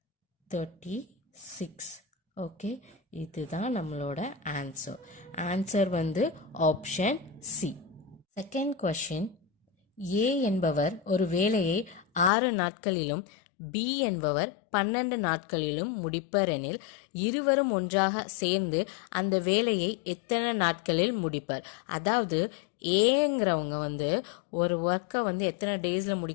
ஓகே, இதுதான் நம்மளோட ஆன்சர் வந்து ஆப்ஷன் சி. செகண்ட் கொஷின், ஏ என்பவர் ஒரு வேலையை 6 நாட்களிலும் பி என்பவர் 12 நாட்களிலும் முடிப்பர் எனில் இருவரும் ஒன்றாக சேர்ந்து அந்த வேலையை எத்தனை நாட்களில் முடிப்பர்? அதாவது ஏங்கிறவங்க வந்து ஒரு ஒர்க்கை வந்து எத்தனை டேஸில்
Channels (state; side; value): drops out; right; at 12.3 s